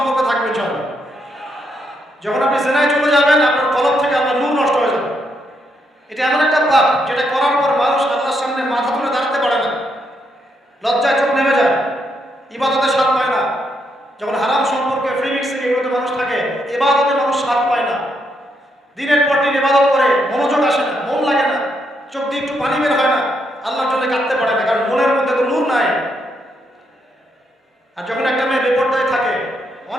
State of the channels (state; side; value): normal; both; correlation 0.78